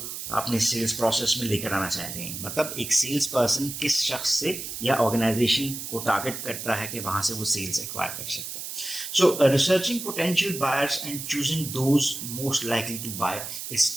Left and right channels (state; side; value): noise; right; hiss, 7 dB below the sound